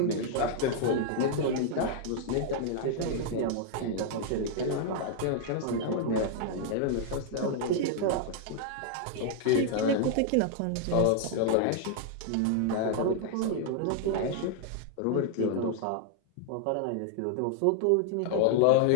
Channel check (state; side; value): different; both; correlation 0.00